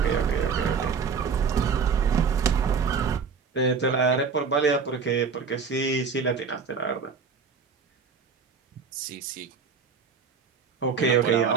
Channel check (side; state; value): left; quieter; 5.6 dB